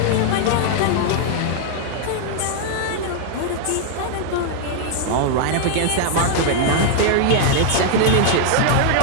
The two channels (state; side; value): different; both; correlation -0.01